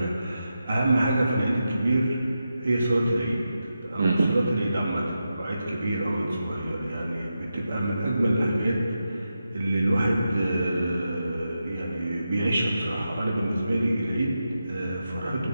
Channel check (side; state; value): both; inverted; correlation -0.89